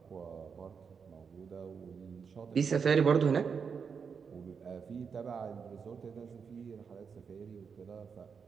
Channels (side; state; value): left; quieter; 6.1 dB